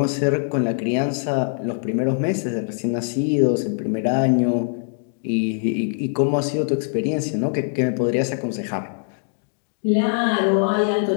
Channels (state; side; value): silent; right; digital silence